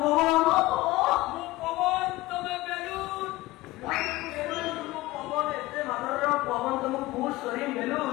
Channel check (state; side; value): quieter; right; 18.9 dB